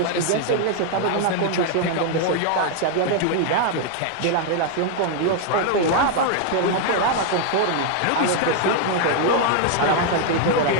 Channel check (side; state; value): both; different; correlation 0.00